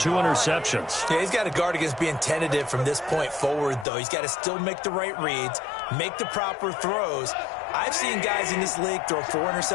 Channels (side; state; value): right; drops out; at 3.9 s